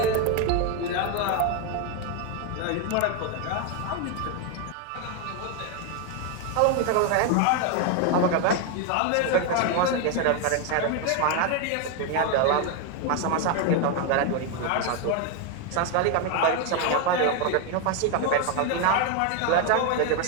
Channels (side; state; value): both; different; correlation 0.01